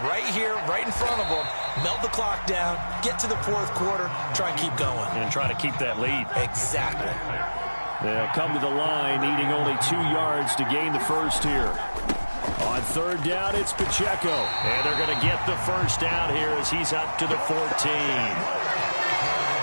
right here, right in front of them, melt the clock down, get to the fourth quarter, try and keep going. And try to keep that lead. Exactly. They'll come to the line, needing only 2 yards to gain the first here. On 3rd down, it's Pacheco. And they're going to get the first down here as he's up to the 14.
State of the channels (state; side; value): inverted; both; correlation -1.00